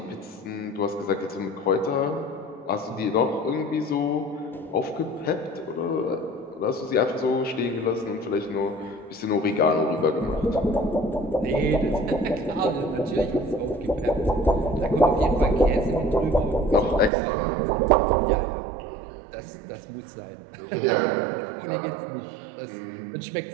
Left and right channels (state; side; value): drops out; left; at 17.1 s